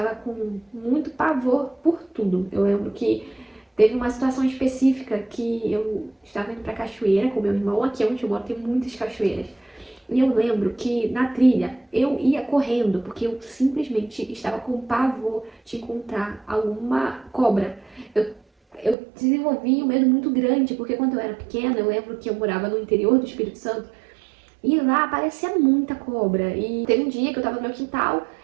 com muito pavor por tudo. Eu lembro que teve uma situação específica que eu estava indo pra cachoeira com meu irmão. Aqui onde eu moro tem muitas cachoeiras. E eu lembro que na trilha eu ia correndo, porque eu simplesmente estava com pavor de encontrar alguma cobra. Eu desenvolvi um medo muito grande, porque quando eu era pequena, eu lembro que eu morava no interior do Espírito Santo, e lá aparecia muita cobra. E teve um dia que eu tava no meu quintal,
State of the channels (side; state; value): left; drops out; at 18.9 s